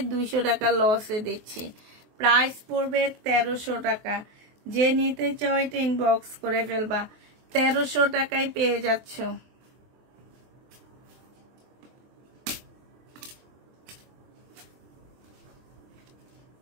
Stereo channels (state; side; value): late; left; 23 ms